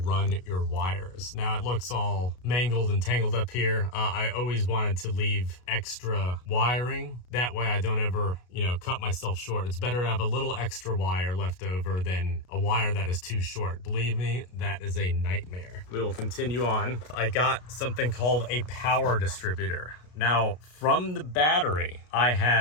your wires. Now it looks all mangled and tangled up here. I always wanted to leave extra wiring. That way I don't ever, you know, cut myself short. It's better to have a little extra wire left over than a wire that is too short. Believe me, that is a nightmare. We will continue on. I got something called a power distributor. Now, from the battery, I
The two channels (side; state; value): right; late; 33 ms